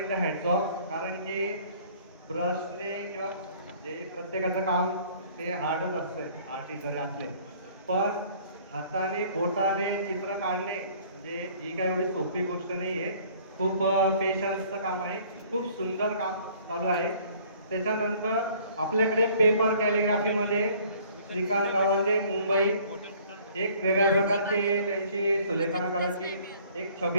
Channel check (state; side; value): inverted; both; correlation -0.55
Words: हॅट्स ऑफ. कारण की ब्रशने किंवा जे प्रत्येकाचं काम ते हार्डच असतं आर्टिस्ट जरी असले, पण हाताने बोटाने चित्र काढणे म्हणजे ही काही एवढी सोपी गोष्ट नाही आहे. खूप पेशन्सचं काम आहे. खूप सुंदर काम चालू आहे. त्याच्यानंतर आपल्याकडे पेपर कॅलिग्राफीमध्ये श्रीकांत गवांडे मुंबई एक वेगळ्या प्रकारची त्यांची सुलेखनाकाराची एक